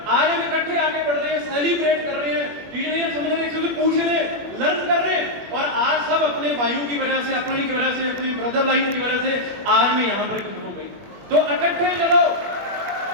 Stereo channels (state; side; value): late; left; 21 ms